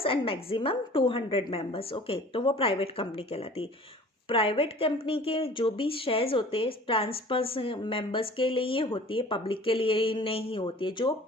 and maximum 200 members. Okay, तो वो प्राइवेट कंपनी कहलाती है। प्राइवेट कंपनी के जो भी शेयर्स होते हैं ट्रांसफर मेंबर्स के लिए होती है, पब्लिक के लिए नहीं होती है। जो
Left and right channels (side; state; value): both; normal; correlation 0.46